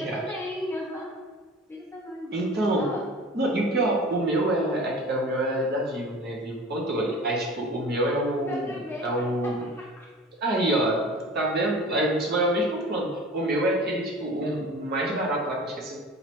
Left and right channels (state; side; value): normal; both; correlation 0.40